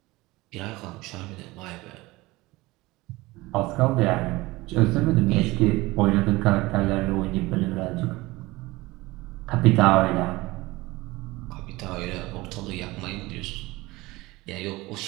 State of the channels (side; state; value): left; quieter; 20.7 dB